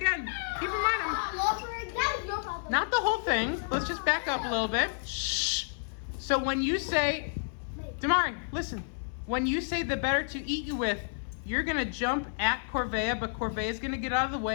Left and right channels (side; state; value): right; silent; 58 dB below the other